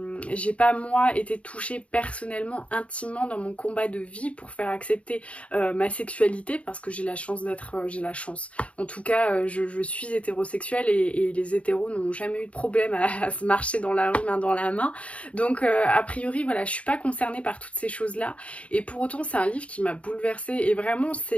moi été touchée personnellement, intimement dans mon combat de vie pour faire accepter ma sexualité, parce que j'ai la chance en tout cas je suis hétérosexuelle, et les hétéros n'ont jamais eu de problème à se marcher dans la rue main dans la main. Donc a priori voilà, je suis pas concernée par toutes ces choses là, et pour autant c'est un livre qui m'a bouleversée, et vraiment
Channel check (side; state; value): right; late; 0.064 ms